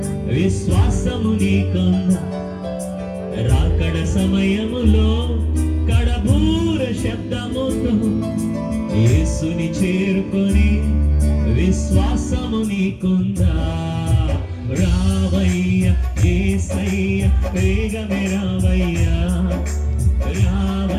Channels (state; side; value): identical; both; correlation 1.00